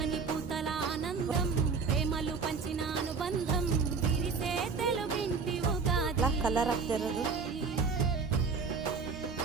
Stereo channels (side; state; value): left; quieter; 5.1 dB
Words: పూతల ఆనందం ప్రేమలు పంచిన అనుబంధం విరిసే తెలుగింటి ఉగాది కలర్ ಆಗ್ತಿರೋದು